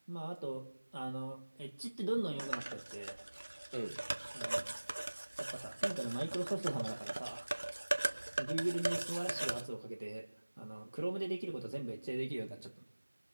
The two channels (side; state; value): both; inverted; correlation -1.00